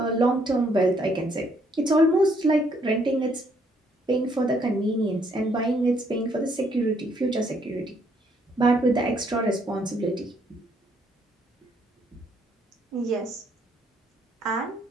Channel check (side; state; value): both; normal; correlation 0.69